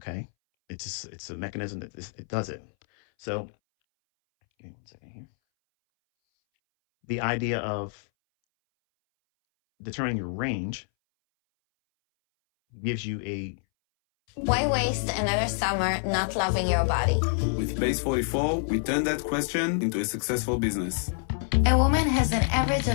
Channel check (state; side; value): silent; right; 60 dB below the other